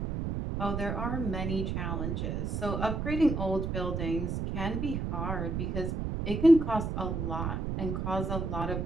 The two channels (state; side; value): noise; right; rumble, 2 dB below the sound